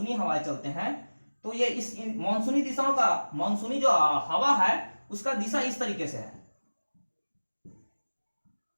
हवाएं चलते हैं, तो ये इस मानसूनी दिशाओं का, मानसूनी जो हवा है उसका दिशा इस तरीके से है।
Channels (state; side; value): inverted; both; correlation -1.00